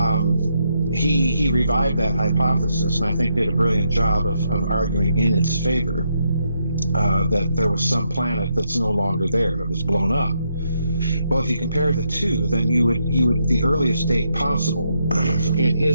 He revived that hypothesis, and I think did a brilliant job of arguing in its favor, that there was some planet that's no longer there, that was blown up. Well, if you compare the two, then you would the earliest date possible, in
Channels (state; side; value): inverted; both; correlation -0.79